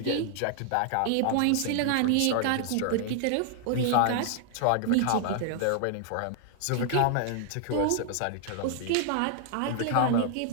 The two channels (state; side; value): different; both; correlation 0.00